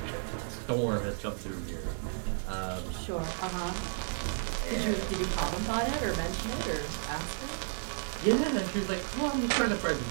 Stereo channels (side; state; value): left; silent; 56 dB below the other